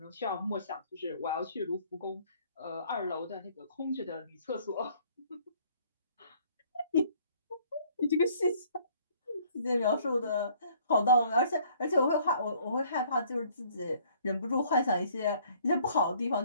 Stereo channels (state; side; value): inverted; both; correlation -0.59